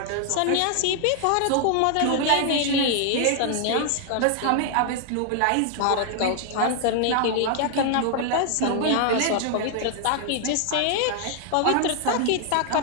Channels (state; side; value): different; both; correlation 0.00